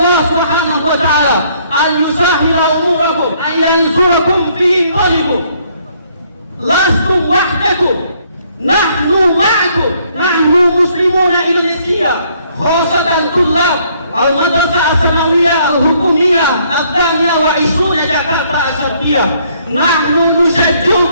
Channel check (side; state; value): both; inverted; correlation -0.66